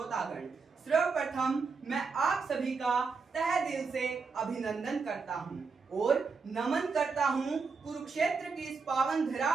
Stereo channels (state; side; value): quieter; left; 4.9 dB